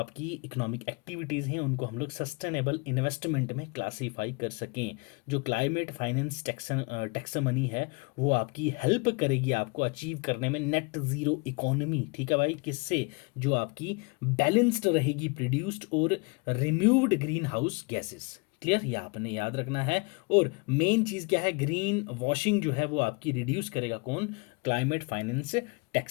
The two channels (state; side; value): quieter; right; 30.6 dB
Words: इकोनॉमिक एक्टिविटीज़ हैं उनको हम लोग सस्टेनेबल इन्वेस्टमेंट में क्लासीफाई कर सकें। जो क्लाइमेट फाइनेंस टैक्सोनॉमी है वो आपकी हेल्प करेगी आपको अचीव करने में नेट ज़ीरो इकोनॉमी। ठीक है भाई, किससे? जो आपकी बैलेंस्ड रहेगी प्रोड्यूस्ड और removed green house gases. Clear, ये आपने याद रखना है। और मेन चीज़ क्या है? ग्रीन वॉशिंग जो है वो आपकी रिड्यूस करेगा कौन? Climate finance